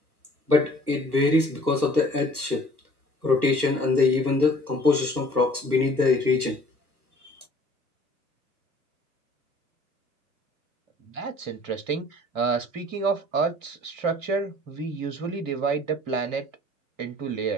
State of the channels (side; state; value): left; late; 1.3 ms